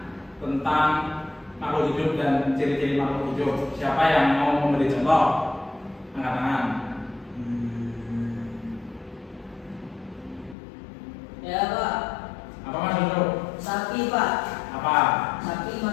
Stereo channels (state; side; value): drops out; right; at 10.6 s